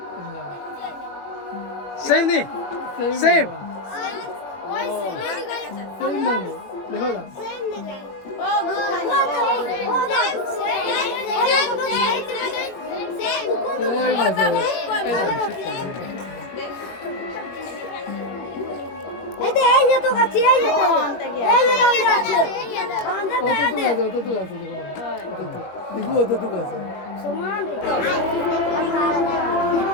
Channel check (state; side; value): late; right; 21 ms